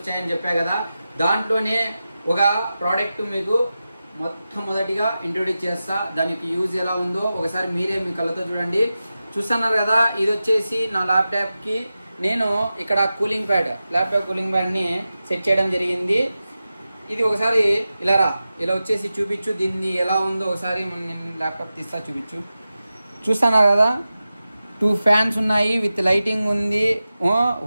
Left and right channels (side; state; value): both; inverted; correlation -0.94